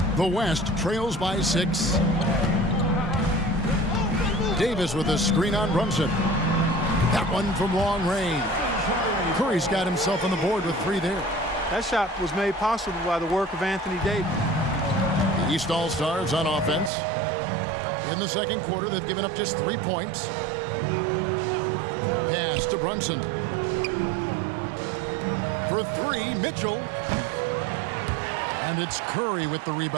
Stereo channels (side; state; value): left; drops out; at 16.9 s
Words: The West trails by 6. Davis with a screen on Brunson. That one from long range. Curry's got himself on the board with 3 there. That shot was made possible by the work of Anthony Davis. The East All-Stars on offense. In the second quarter, they've given up just 3 points. Pass to Brunson. For 3, Mitchell. And it's Curry with the